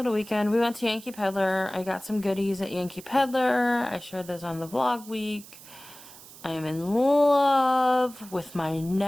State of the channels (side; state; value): right; noise; hiss, 19 dB below the sound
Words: weekend. We went to Yankee Pedlar. I got some goodies at Yankee Pedlar. I shared those on the vlog week. I am in love with my